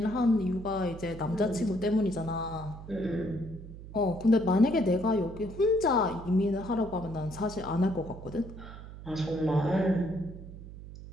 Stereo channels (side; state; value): right; noise; hum, 14 dB below the sound